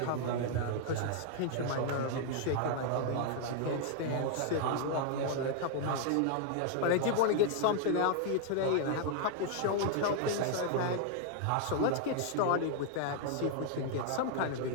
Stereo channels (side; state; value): both; different; correlation 0.00